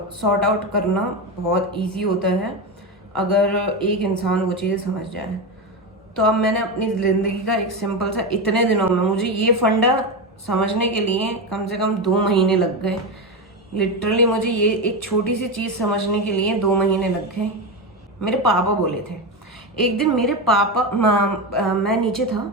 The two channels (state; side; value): normal; both; correlation 0.16